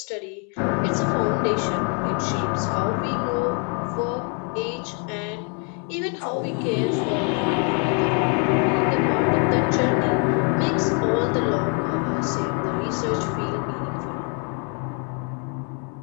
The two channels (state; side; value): quieter; right; 38.3 dB